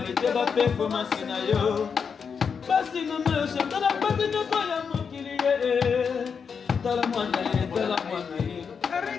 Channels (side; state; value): right; quieter; 6.2 dB